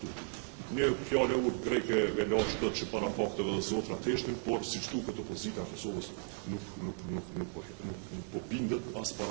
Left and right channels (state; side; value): silent; left; 54 dB below the other